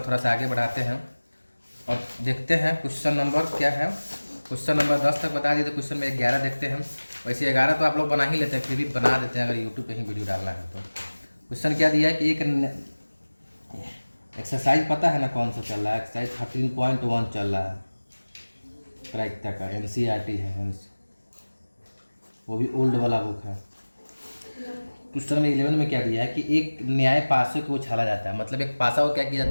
सा आगे बढ़ाते हैं और देखते हैं क्वेश्चन नंबर क्या है। क्वेश्चन नंबर 10 तक बता दिए तो क्वेश्चन में 11 देखते हैं। वैसे 11 तो आप लोग बना ही लेते हैं, फिर भी बना देते हैं अगर यूट्यूब पे ही वीडियो डालना है तो। क्वेश्चन क्या दिया है कि एक एक्सरसाइज पता है ना कौन सा चल रहा है, एक्सरसाइज 13.1 चल रहा है प्रायिकता का, NCERT है, वो भी ओल्ड वाला बुक है। क्वेश्चन में 11 में क्या दिया है कि एक न्याय पासे को उछाला जाता है, मतलब एक पासा को क्या किया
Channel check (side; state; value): both; inverted; correlation -1.00